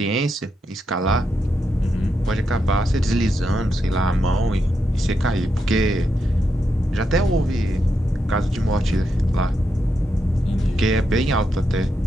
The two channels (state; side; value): normal; both; correlation 0.83